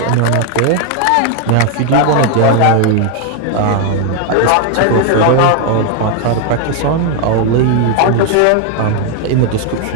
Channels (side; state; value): both; different; correlation 0.01